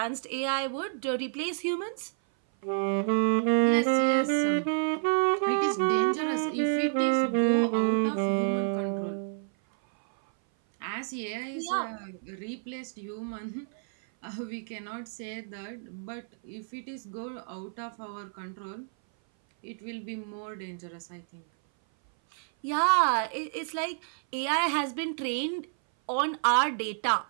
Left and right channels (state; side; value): silent; left; 56 dB below the other